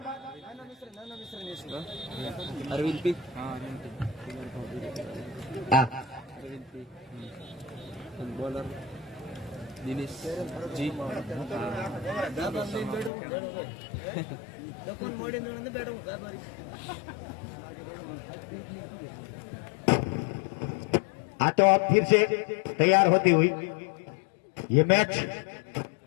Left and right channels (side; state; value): right; drops out; at 13.1 s